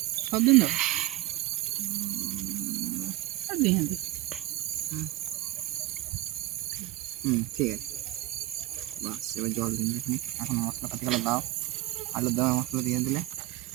সব দিন দাও আর দিয়ে দিই ঠিক আছে বাস এবার জল দিন এখানে এখন মশলাপাতিগুলো দাও আলুর দমের মশলা দিয়ে দিলে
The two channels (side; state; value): left; quieter; 17.5 dB